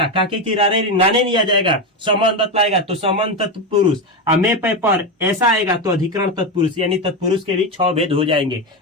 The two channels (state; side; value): normal; both; correlation 0.14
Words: काके की नाने नहीं आ जाएगा, संबंध बतलाएगा तो संबंध तत्पुरुष। में पर ऐसा आएगा तो अधिकरण तत्पुरुष, यानी तत्पुरुष के भी 6 भेद हो जाएंगे।